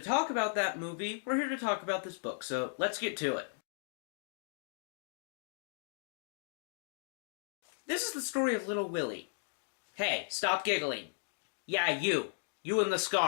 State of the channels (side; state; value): right; silent; digital silence